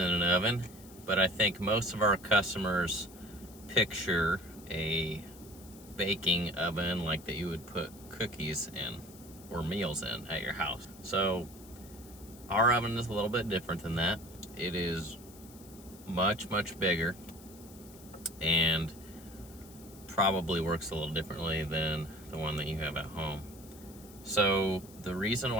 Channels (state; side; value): noise; left; hiss, 20 dB below the sound